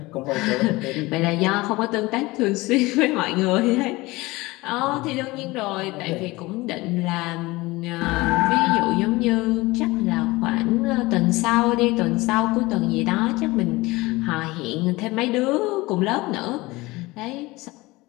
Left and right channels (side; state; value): right; quieter; 21.3 dB